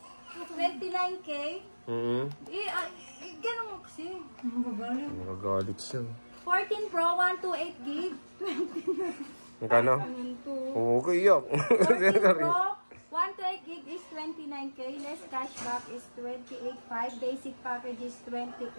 29K. Ganun mo kasi. Magagalit siya. 14 Pro, 128 gig. Magkano? Okay, yak. 14 Pro, 128 gig is 29K. Less cashback is 28.5. Basic package is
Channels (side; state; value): both; inverted; correlation -1.00